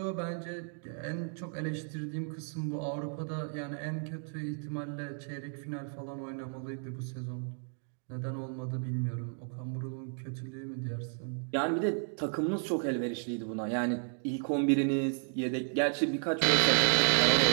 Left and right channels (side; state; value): left; silent; 56 dB below the other